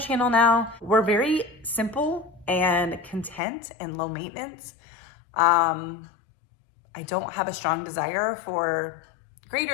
channel now. We're very simple and content and low maintenance. I don't have a strong desire for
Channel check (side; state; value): right; drops out; at 3.4 s